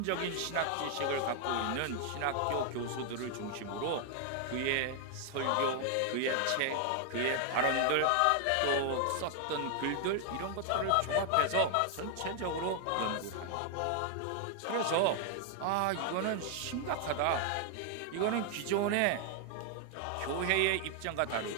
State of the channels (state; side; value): different; both; correlation 0.00